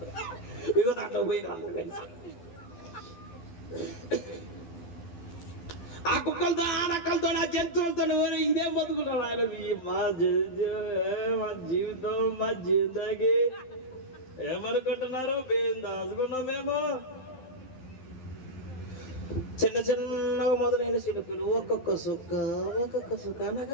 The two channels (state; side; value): late; right; 12 ms